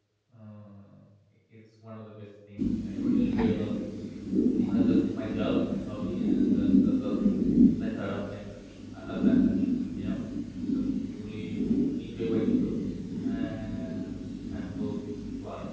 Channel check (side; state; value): both; identical; correlation 1.00